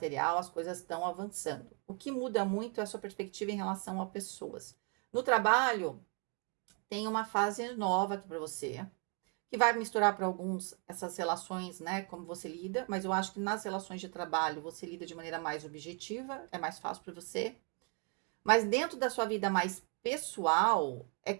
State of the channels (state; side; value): quieter; left; 33.9 dB